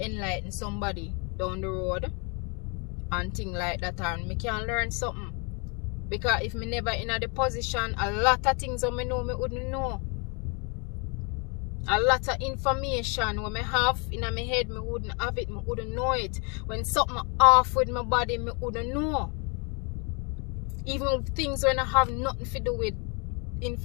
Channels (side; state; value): right; quieter; 33.7 dB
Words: somebody down the road and things like that, and me can learn something. Because if me never in the position, a lot of things that me know me wouldn't know. A lot of information when me have in my head, me wouldn't have it, me wouldn't know it. When something off with my body, me wouldn't know. Even things when I have nothing to do with